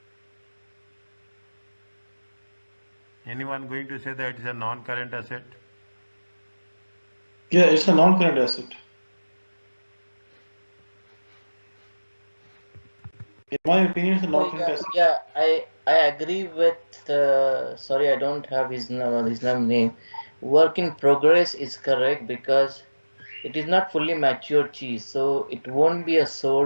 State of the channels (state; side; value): inverted; both; correlation -1.00